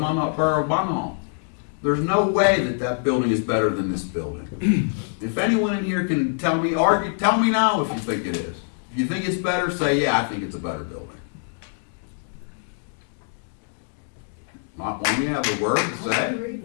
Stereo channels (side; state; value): right; silent; digital silence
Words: of Munhall. There's no way that building is better than this building. If anyone in here can tell me now if you think it is. If you think it's better, say, yeah, I think it's a better building. Not one of you have a word to say?